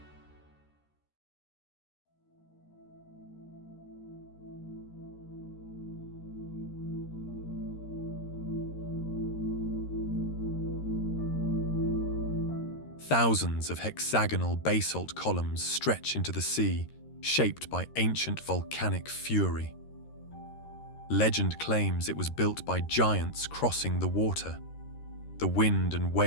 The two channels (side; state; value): right; late; 13 ms